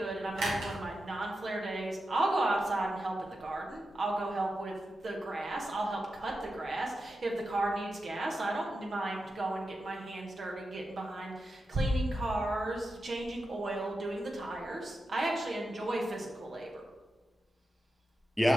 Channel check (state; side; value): normal; both; correlation 0.90